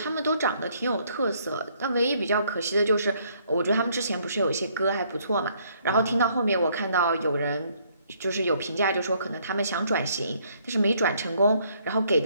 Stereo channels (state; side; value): inverted; both; correlation -0.67